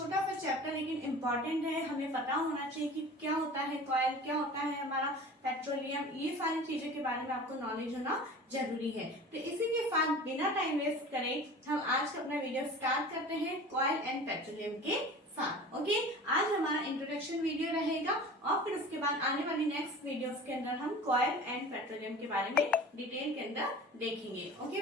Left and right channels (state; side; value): normal; both; correlation 0.39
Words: सा चैप्टर लेकिन इम्पोर्टेंट है, हमें पता होना चाहिए कि क्या होता है कॉइल, क्या होता है हमारा पेट्रोलियम, ये सारी चीजों के बारे में आपको नॉलेज होना जरूरी है। तो इसी के साथ बिना टाइम वेस्ट करें हम आज का अपना वीडियो स्टार्ट करते हैं कॉइल एंड पेट्रोलियम के साथ। ओके, आज हमारा इंट्रोडक्शन वीडियो रहेगा और फिर उसके बाद आने वाली नेक्स्ट वीडियोस के अंदर हम कॉइल एंड पेट्रोलियम के बारे में डिटेल के अंदर देखेंगे। ओके